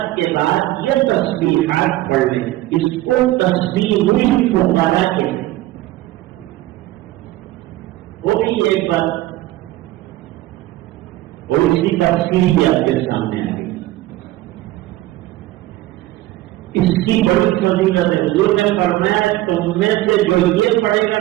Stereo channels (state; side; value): quieter; left; 16.5 dB